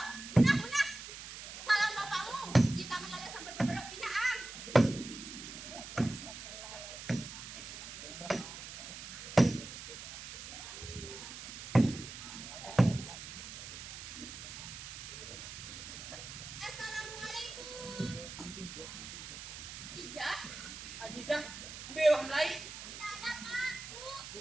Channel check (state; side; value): noise; right; hiss, 10 dB below the sound